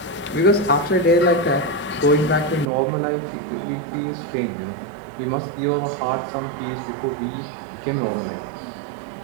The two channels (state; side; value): drops out; left; at 2.7 s